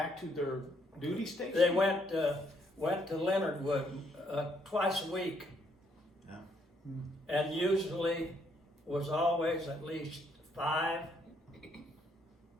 to their duty station? they went to Leonardwood twice a week, Yeah. and usually was always at least 5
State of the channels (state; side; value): normal; both; correlation 0.71